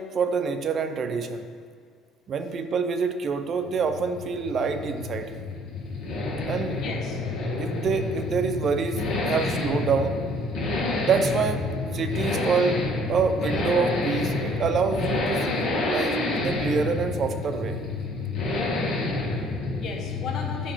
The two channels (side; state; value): both; normal; correlation 0.59